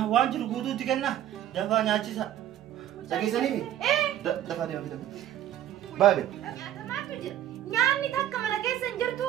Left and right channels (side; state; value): left; quieter; 11.9 dB